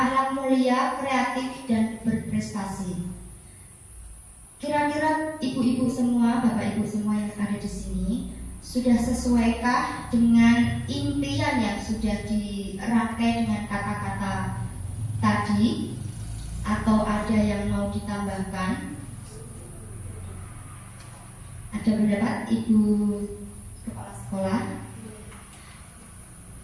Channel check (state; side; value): identical; both; correlation 1.00